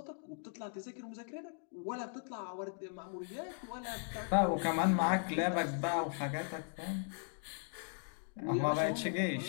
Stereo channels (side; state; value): right; silent; 53 dB below the other